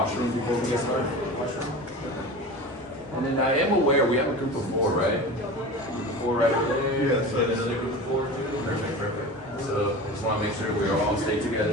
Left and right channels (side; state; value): both; normal; correlation 0.33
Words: before we get started? Washroom? And then I am aware we have a group of 4, right? Group of 4 right there. Yes. And another group of 4 too. Perfect, perfect. So I just want to make sure we all stay